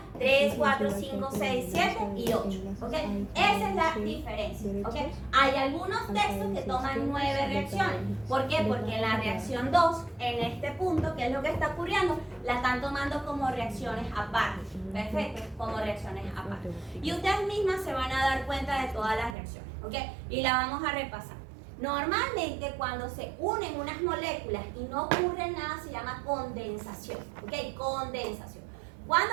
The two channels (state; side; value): drops out; left; at 19.4 s